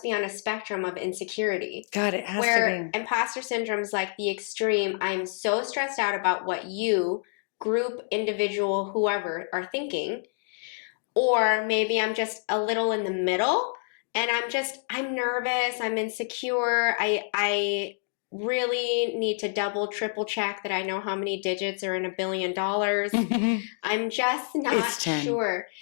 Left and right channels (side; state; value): right; silent; 60 dB below the other